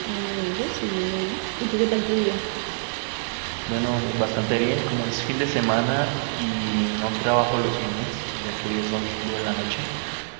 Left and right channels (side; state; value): left; silent; digital silence